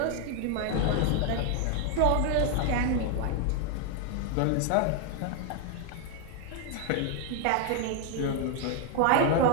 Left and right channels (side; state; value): both; different; correlation 0.00